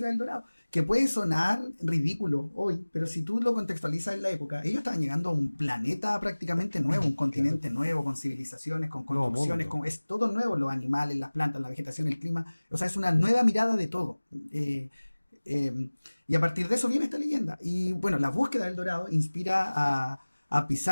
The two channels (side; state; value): both; inverted; correlation -1.00